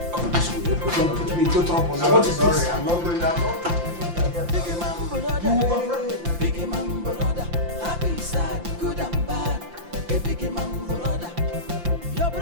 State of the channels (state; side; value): late; left; 5.8 ms